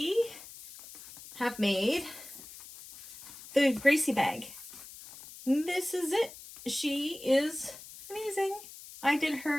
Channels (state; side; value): noise; left; hiss, 16 dB below the sound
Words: have made the Gracie bag. This is it. She is amazing. I did